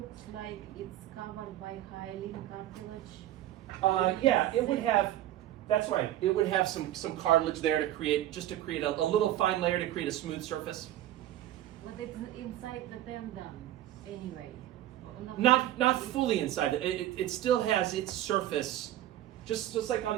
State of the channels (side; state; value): left; quieter; 13.3 dB